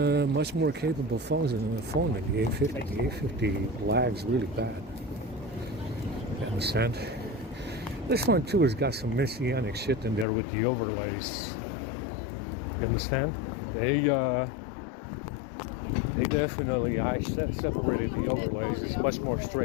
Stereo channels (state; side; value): drops out; right; at 10.2 s